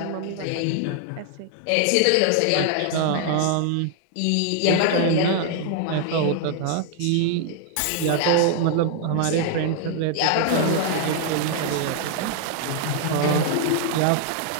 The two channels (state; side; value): different; both; correlation 0.00